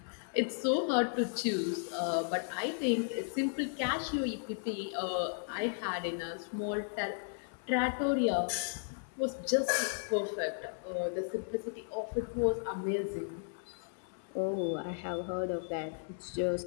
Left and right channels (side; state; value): right; silent; 55 dB below the other